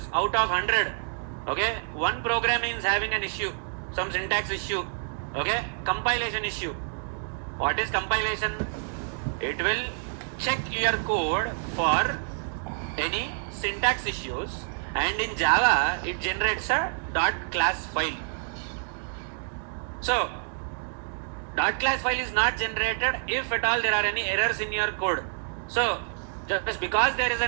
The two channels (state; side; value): silent; left; 60 dB below the other